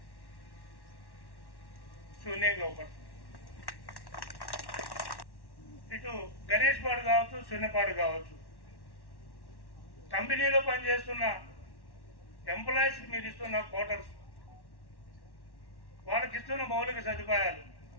శూన్యంగా ఒకటి. ఇటు గణేష్ పాడు కావచ్చు, శూన్యపాడు కావచ్చు, కంపెనీలో పనిచేస్తున్న ఎంప్లాయీస్కి మీరు ఇస్తున్న క్వార్టర్స్, వాళ్ళకి ఇస్తున్న మౌలిక సదుపాయాలు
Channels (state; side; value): late; right; 1.1 ms